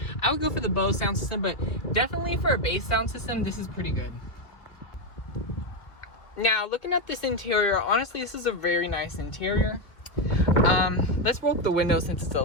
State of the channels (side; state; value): right; late; 2.4 ms